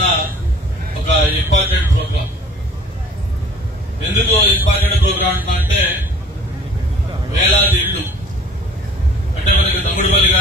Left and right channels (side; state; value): both; normal; correlation 0.50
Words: ఒక ఇంపార్టెంట్ ప్రోగ్రాం. ఎందుకు ఇంపార్టెంట్ ప్రోగ్రాం అంటున్నారంటే వేలాది ఇళ్లు అంటే మనకి తమ్ముడిపల్లి